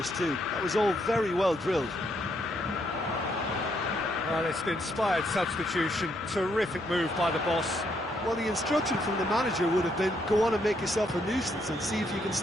too. That was all very well drilled. Well, it's an inspired substitution. Terrific move by the boss. Well, the instruction from the manager would have been, go on and make yourself a nuisance and see if you can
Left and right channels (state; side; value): noise; right; hum, 26 dB below the sound